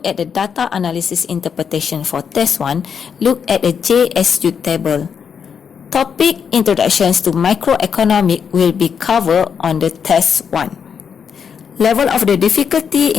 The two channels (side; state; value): right; quieter; 6.9 dB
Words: at the data analysis interpretation for test 1, look at the JSU table. Topic introductions to microeconomic will be covered on the test 1. Level of the difficulty